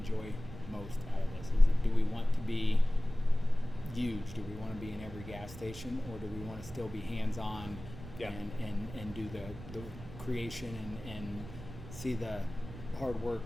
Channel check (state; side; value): noise; right; rumble, 13 dB below the sound